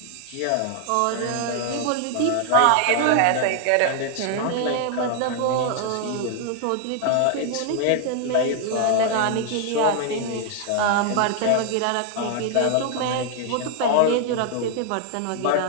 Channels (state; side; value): different; both; correlation 0.00